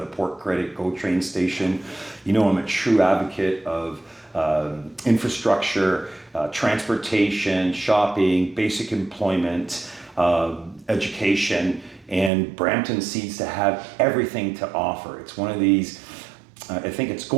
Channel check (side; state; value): left; drops out; at 12.3 s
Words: Port Credit GO train station. You know, I'm a true advocate of infrastructure, transportation, shopping, basic employment, education, and Brampton seems to have everything to offer. It's one of these, I think it's